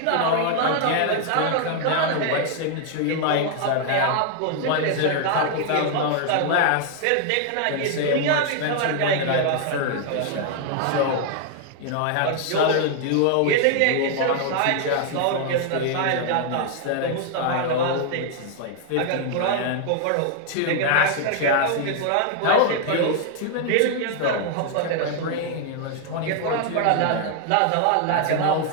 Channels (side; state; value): both; different; correlation 0.00